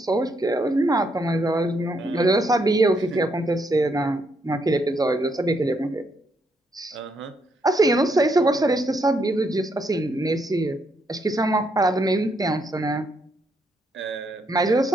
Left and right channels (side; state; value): both; normal; correlation 0.76